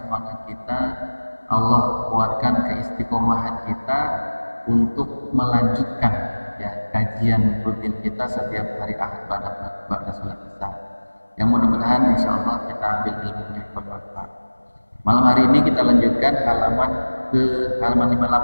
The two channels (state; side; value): inverted; both; correlation -1.00